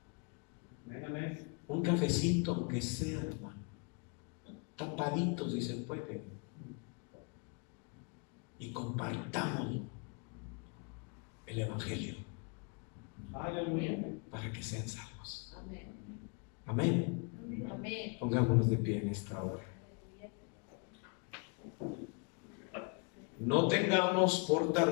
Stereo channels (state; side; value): quieter; right; 35.5 dB